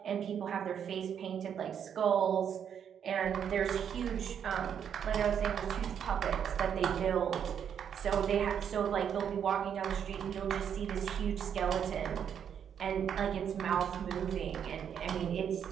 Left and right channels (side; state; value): left; quieter; 8.3 dB